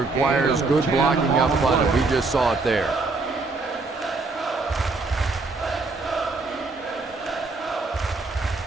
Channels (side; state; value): left; quieter; 3.7 dB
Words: good blocking up front, and we just saw it there.